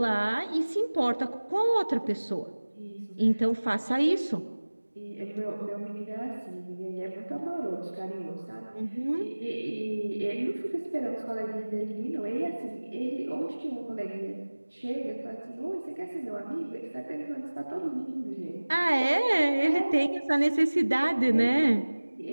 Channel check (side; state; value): both; inverted; correlation -1.00